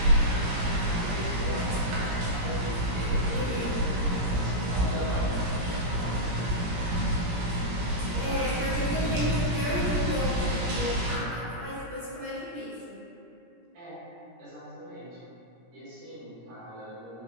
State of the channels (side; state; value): left; late; 17 ms